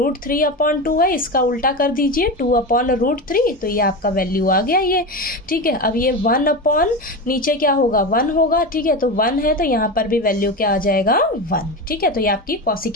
है, इसका उल्टा कर दीजिए 2/√3, तो ये आपका वैल्यू आ गया ये। ठीक है, अब ये 1/ नीचे क्या होगा, 1 होगा। ठीक है, तो 1 है तो यहाँ पर भी वैल्यू क्या आ जाएगा, 1। ठीक है, तो ये आपकी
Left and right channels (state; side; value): normal; both; correlation 0.22